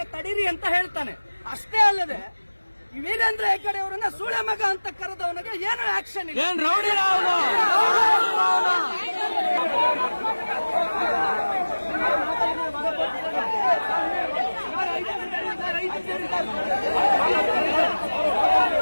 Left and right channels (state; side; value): inverted; both; correlation -1.00